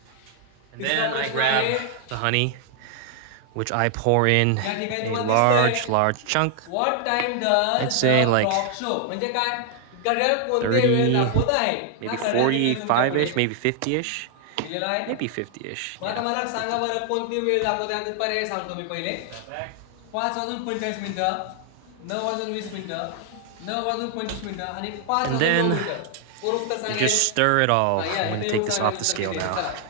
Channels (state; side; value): different; both; correlation 0.00